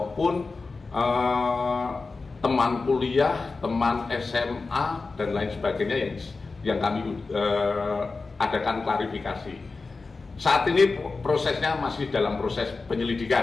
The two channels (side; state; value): right; quieter; 4.0 dB